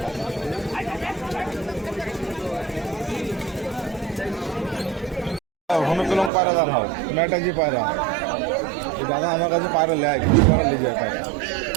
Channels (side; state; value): left; drops out; at 6.3 s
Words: পাতা। হনুকলম পায়রা দাম হয়, ম্যাটাজি পায়রা। দাদা আমার কাছে পায়রা লেয়, কিছু পায়রা নিয়ে যায় পায়রা।